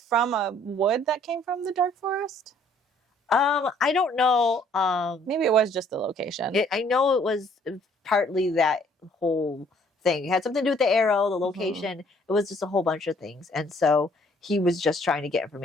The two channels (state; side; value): normal; both; correlation 0.61